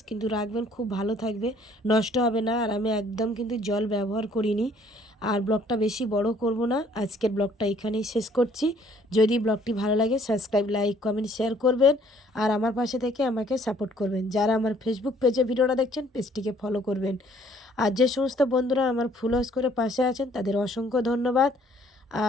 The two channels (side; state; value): both; normal; correlation 0.61